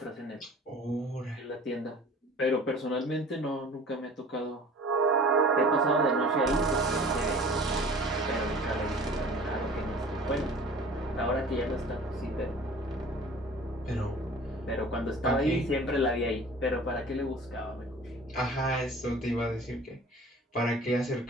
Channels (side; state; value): both; normal; correlation 0.44